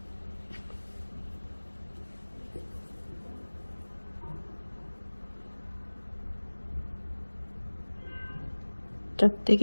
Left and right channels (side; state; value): both; inverted; correlation -1.00